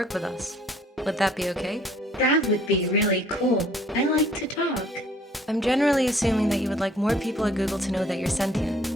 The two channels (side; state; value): both; normal; correlation 0.58